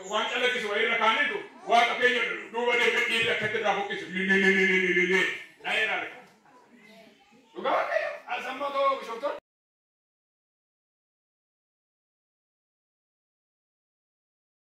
ዋንጨለክስ ወይ ረካኒቱ ዋቀ ከኛ ዱወደ ከዲ ለከተራ ሆክስ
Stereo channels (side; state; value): both; identical; correlation 1.00